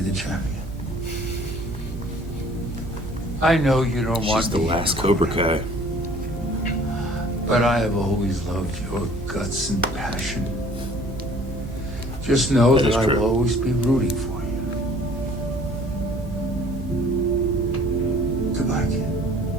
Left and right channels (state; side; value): normal; both; correlation 0.53